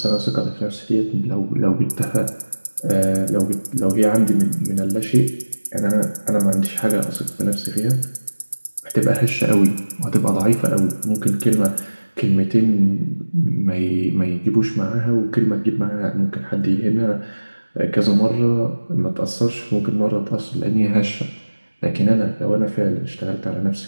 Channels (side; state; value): both; inverted; correlation -1.00